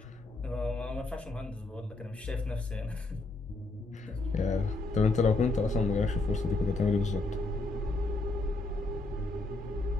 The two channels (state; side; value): quieter; right; 3.1 dB